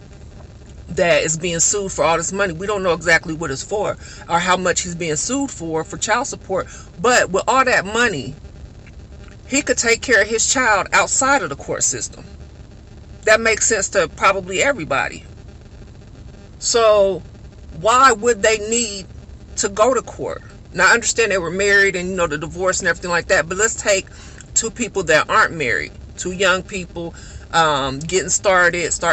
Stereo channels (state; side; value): identical; both; correlation 1.00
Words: that is being sued for all this money. We don't know exactly what it's for or how much he's being sued for child support. But with all that money, he could take care of his child outside of the court system. That makes sense to probably everybody. So why would they need to go to court? Now I understand they were married and the divorce and everything like that, but let's take two people that aren't married, two young people